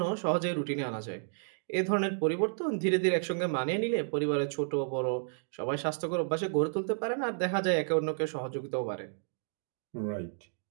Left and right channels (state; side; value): silent; left; digital silence